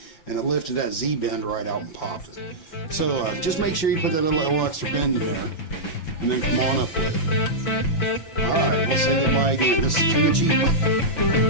and it lifted that Z bend right out and popped it. So just make sure you put that little extra bend in there and then come on up with it. Alright, we'll say goodbye again. This is King of Cheap.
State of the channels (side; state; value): right; late; 6.0 ms